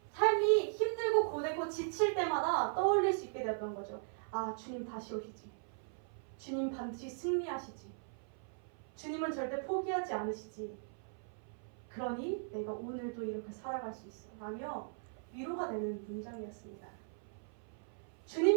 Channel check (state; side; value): silent; left; 52 dB below the other